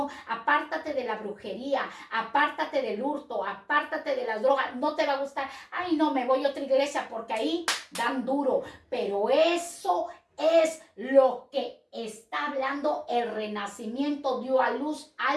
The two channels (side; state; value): both; identical; correlation 1.00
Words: apártate de la brujería, apártate del hurto, apártate de las drogas, no te va a gustar, ay no, me voy a otra iglesia porque ahí dan duro, pero eso es lo que está hablando el Renacimiento, dio a luz